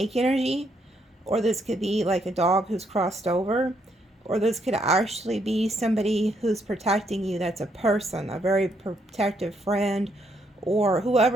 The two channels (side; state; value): both; normal; correlation 0.74